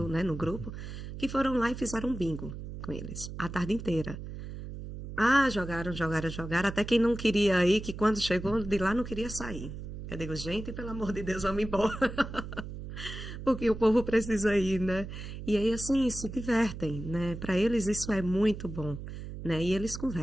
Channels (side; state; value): right; noise; hum, 9 dB below the sound